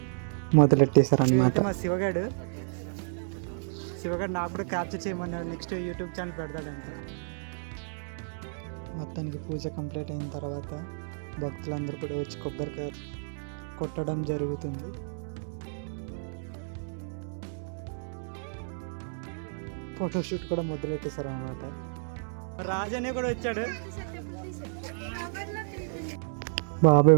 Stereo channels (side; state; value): left; silent; digital silence